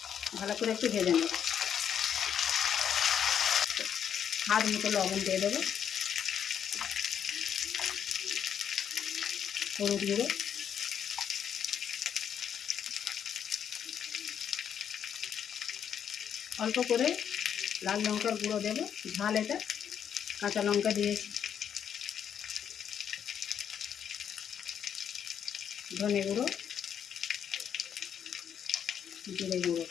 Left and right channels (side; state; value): right; quieter; 8.5 dB